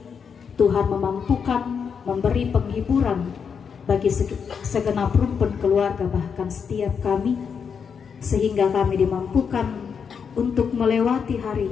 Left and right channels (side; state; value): right; quieter; 6.6 dB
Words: Tuhan memampukan memberi penghiburan bagi segenap rumpun keluarga, bahkan setiap kami, sehingga kami dimampukan untuk melewati hari